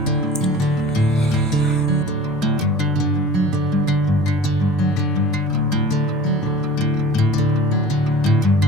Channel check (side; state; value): both; normal; correlation 0.42